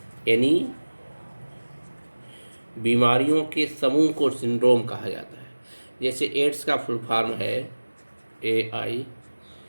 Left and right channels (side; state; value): both; inverted; correlation -1.00